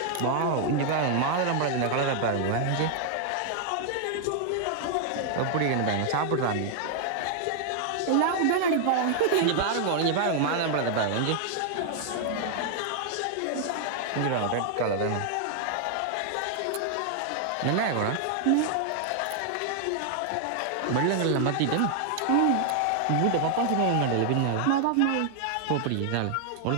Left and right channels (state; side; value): different; both; correlation 0.00